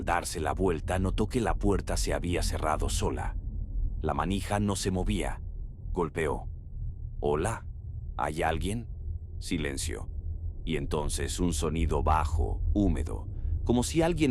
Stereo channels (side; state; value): both; identical; correlation 1.00